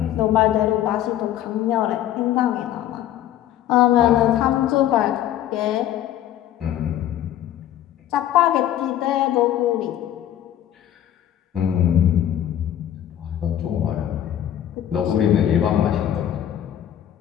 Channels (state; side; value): quieter; right; 11.6 dB